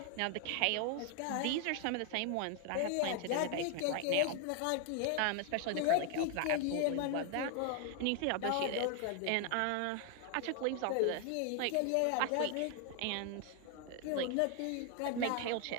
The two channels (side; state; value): both; different; correlation 0.00